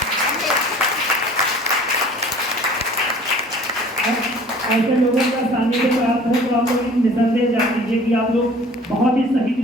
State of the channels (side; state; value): both; normal; correlation 0.48